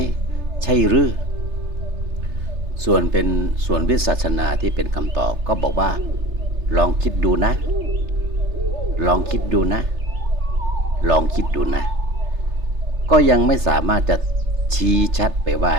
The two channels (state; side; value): late; left; 3.3 ms